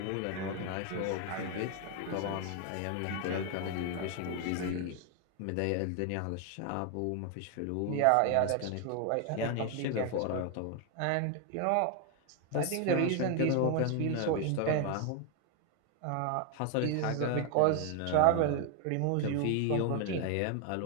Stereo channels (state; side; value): different; both; correlation 0.01